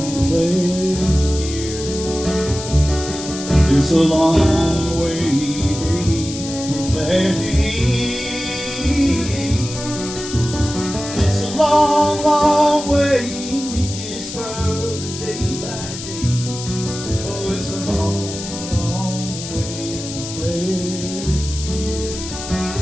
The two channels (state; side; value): noise; left; hiss, 9 dB below the sound